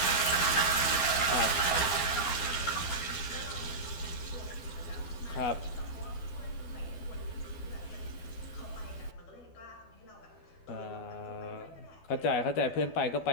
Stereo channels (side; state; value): right; late; 12 ms